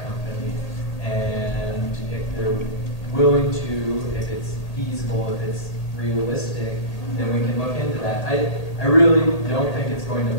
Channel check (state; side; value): late; right; 1.8 ms